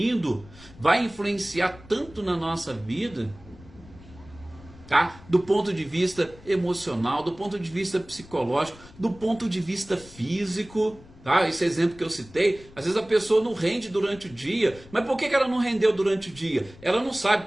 vai influenciar tanto na nossa vida, tá? Do ponto de vista emocional, do ponto de vista psicológico, do ponto de vista físico, tá? Esse exemplo que eu citei, às vezes a pessoa não rende durante o dia, mas por que ela não rendeu durante o dia? Ela não sabe,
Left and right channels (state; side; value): noise; left; rumble, 21 dB below the sound